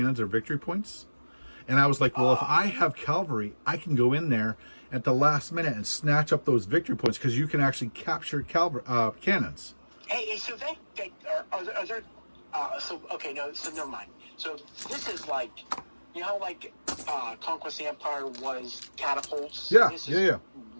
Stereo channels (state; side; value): inverted; both; correlation -1.00